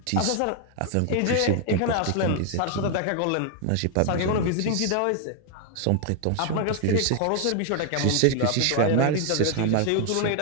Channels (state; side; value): different; both; correlation 0.00